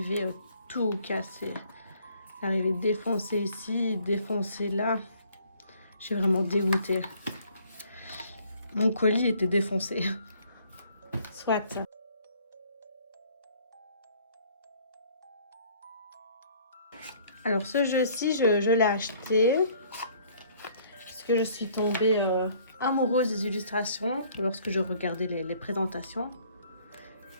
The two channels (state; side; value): inverted; both; correlation -0.59